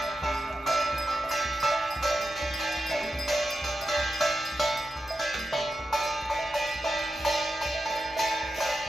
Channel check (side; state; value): both; normal; correlation 0.89